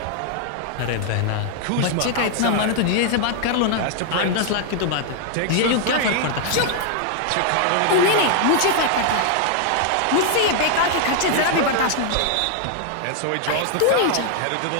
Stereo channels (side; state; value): both; different; correlation 0.00